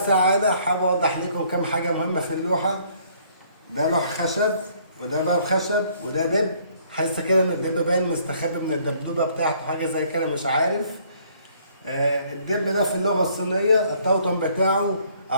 السعادة، حابب أوضح لكم كم حاجة مهمة في اللوحة. ده لوح خشب، وده باب خشب، وده دب. حاسة كده إن الدب باين مستخبي من الدبدوبة بتاعته، حاجة زي كده مش عارف. الدب ده في اللغة الصينية التوتم بتاعه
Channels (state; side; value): inverted; both; correlation -0.63